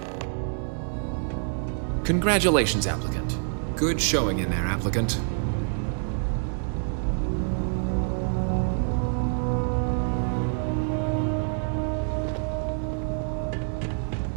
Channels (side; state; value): left; silent; 60 dB below the other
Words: Congratulations, applicant. Good showing in there, applicant.